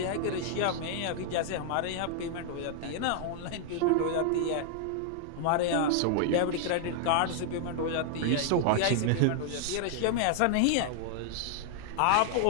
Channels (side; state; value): both; different; correlation 0.00